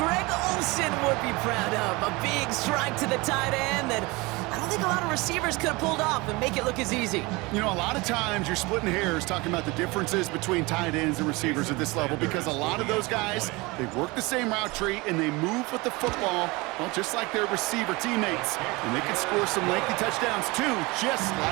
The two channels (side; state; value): left; quieter; 24.1 dB